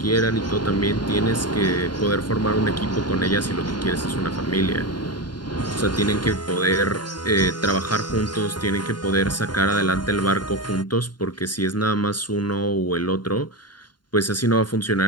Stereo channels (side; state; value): right; late; 0.71 ms